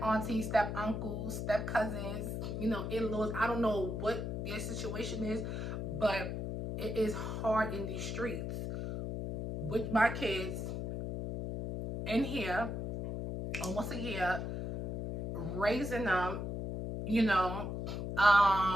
aunties, step uncles, step cousins, in-laws. I don't know what your situation is, but it is hard in these streets. with my kids in here almost a year, raising them, you know,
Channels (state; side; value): noise; left; hum, 3 dB below the sound